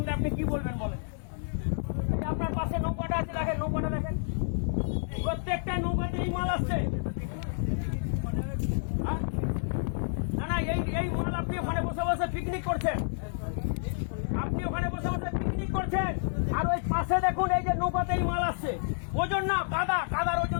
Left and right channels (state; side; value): silent; right; digital silence